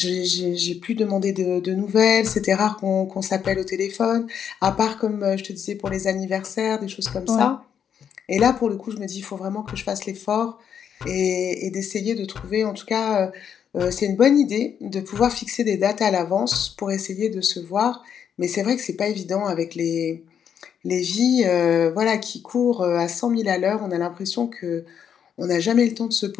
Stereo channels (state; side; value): quieter; right; 8.2 dB